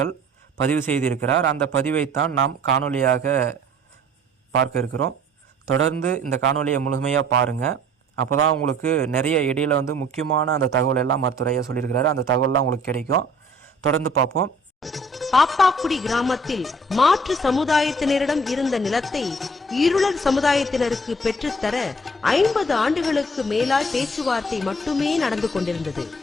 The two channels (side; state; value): both; normal; correlation 0.54